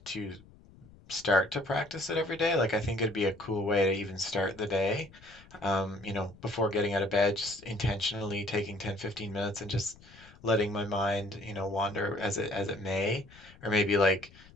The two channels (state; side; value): noise; left; rumble, 23 dB below the sound